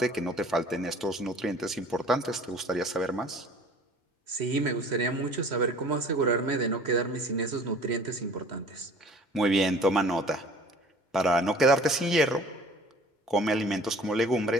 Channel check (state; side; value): normal; both; correlation 0.49